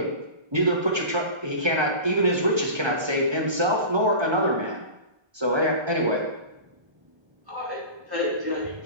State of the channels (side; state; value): left; late; 1.3 ms